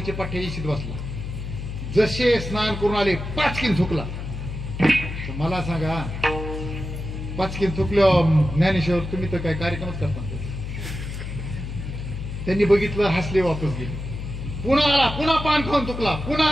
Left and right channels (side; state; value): left; noise; hum, 7 dB below the sound